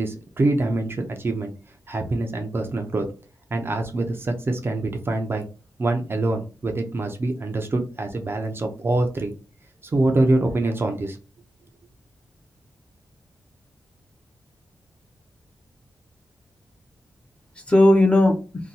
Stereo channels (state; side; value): normal; both; correlation 0.90